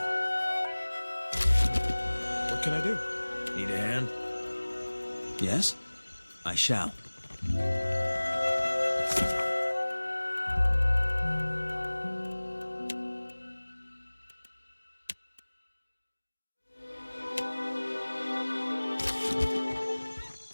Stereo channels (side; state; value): both; inverted; correlation -1.00